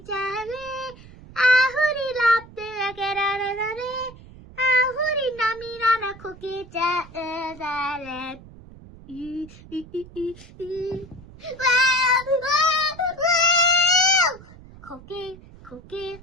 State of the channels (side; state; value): right; noise; rumble, 20 dB below the sound